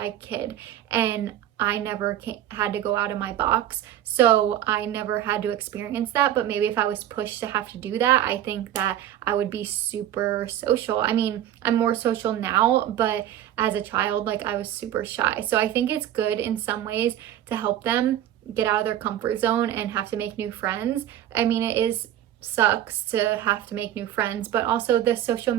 kid, and I never had to go out of my box, so I never had to experience that. But maybe if I was pushed to have to do that, I think that I would be super social. I mean, I'm more social now, but as a child, like, I was super shy. So I think it's good in some ways to help them get out of their comfort zone and have to make new friends. I mean, sucks to have to make new friends, but also the social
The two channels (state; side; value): quieter; left; 11.6 dB